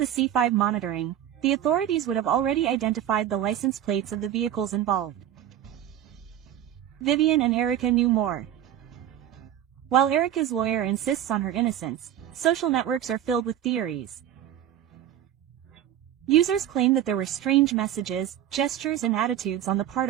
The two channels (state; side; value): quieter; left; 11.1 dB